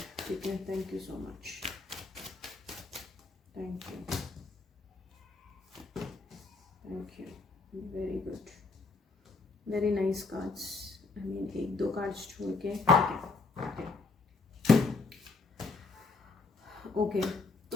ठीक है। Thank you so much, thank you, thank you, very good, very nice cards. I mean एक दो कार्ड्स छोड़ के, ठीक है, ओके।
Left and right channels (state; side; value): quieter; right; 3.9 dB